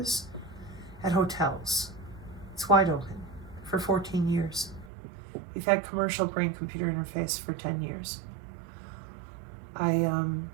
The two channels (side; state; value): left; drops out; at 4.9 s